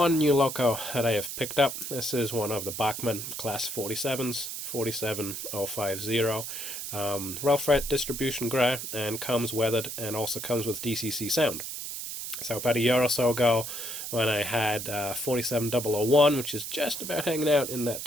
new Loco that I have picked up. This is one of the Bachmann Class 47s, 47050. Rail freight distribution grey, and comes weathered and also comes with DCC sound. So about a year or so ago, when I had 47001, which is just about hanging out in that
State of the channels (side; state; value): right; noise; hiss, 6 dB below the sound